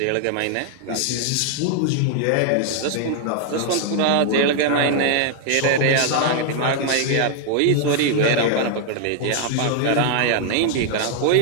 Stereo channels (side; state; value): both; different; correlation 0.00